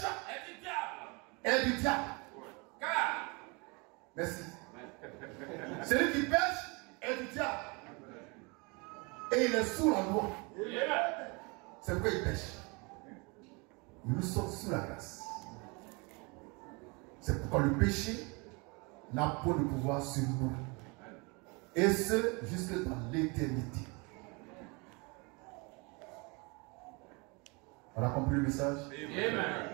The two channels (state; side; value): quieter; left; 29.2 dB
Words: est du diable. Car. Merci. Celui qui pêche est du diable. Et il est sous la loi. C'est pourquoi il pêche. Nous sommes sous la grâce. C'est pourquoi le péché n'a pas de pouvoir sur nous. Et ce, jusque dans l'éternité. On a compris le message? Amen.